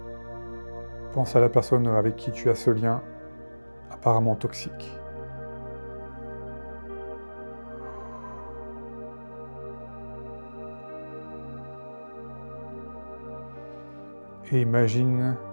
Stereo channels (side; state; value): both; inverted; correlation -1.00